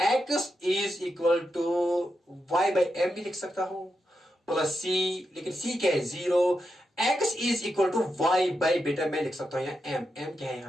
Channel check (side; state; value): both; normal; correlation 0.86